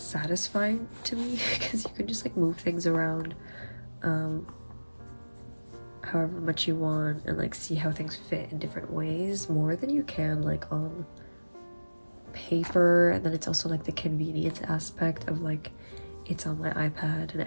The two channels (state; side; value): inverted; both; correlation -1.00